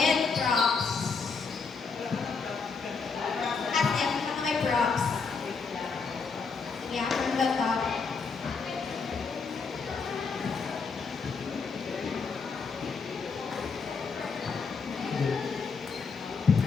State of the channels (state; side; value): quieter; right; 5.0 dB